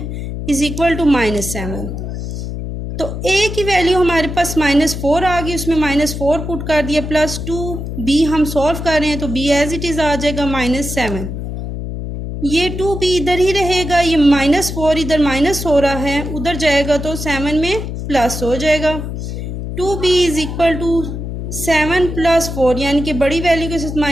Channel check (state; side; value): noise; left; hum, 6 dB below the sound